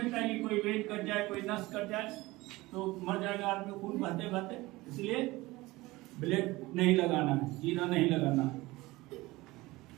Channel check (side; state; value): left; quieter; 20.3 dB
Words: है कि कोई वेट कट जाए, कोई नस कट जाए, तो मर जाएगा आदमी खून बहते बहते, इसलिए ब्लेड नहीं लगाना है, चीरा नहीं लगाना है।